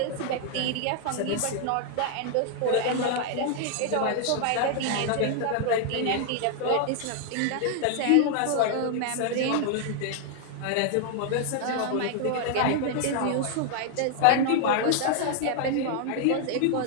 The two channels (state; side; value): different; both; correlation 0.00